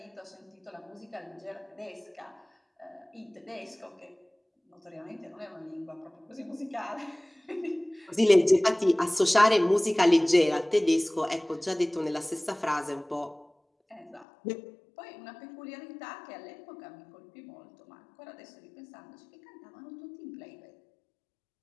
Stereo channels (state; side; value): drops out; right; at 14.2 s